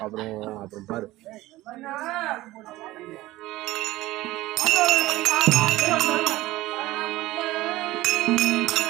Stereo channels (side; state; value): left; quieter; 17.6 dB